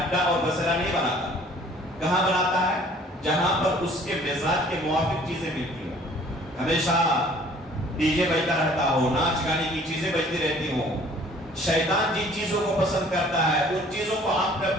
اور بسرا نہیں بناتا. کہاں بناتا ہے؟ جہاں پر اس کے مزاج کے موافق چیزیں ملتی ہوں. ہمیشہ ڈی جے بجتا رہتا ہو، ناچ گانے کی چیزیں بجتی رہتی ہوں. شیطان جن چیزوں کو پسند کرتا ہے ان چیزوں کو آپ نے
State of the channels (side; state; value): both; normal; correlation 0.54